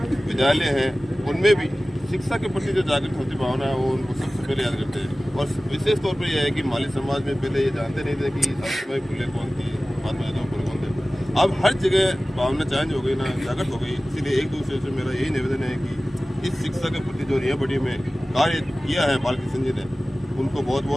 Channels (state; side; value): normal; both; correlation 0.97